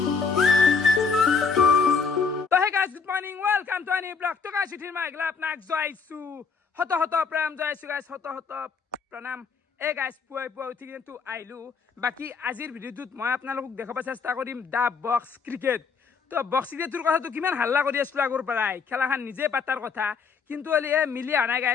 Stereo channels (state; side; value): quieter; right; 5.4 dB